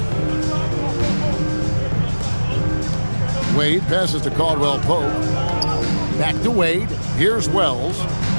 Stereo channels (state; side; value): inverted; both; correlation -1.00